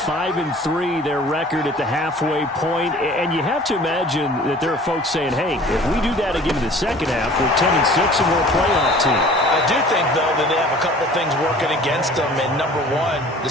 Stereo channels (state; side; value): normal; both; correlation 0.47